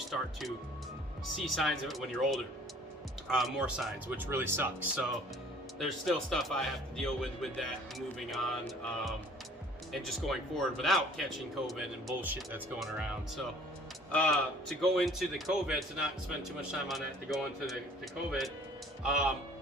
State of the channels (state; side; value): normal; both; correlation 0.53